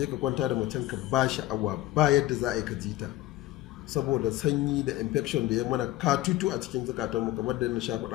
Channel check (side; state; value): right; quieter; 15.7 dB